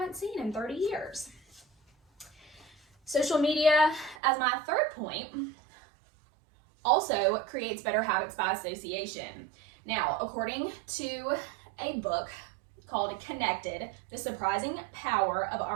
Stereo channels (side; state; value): left; drops out; at 4.2 s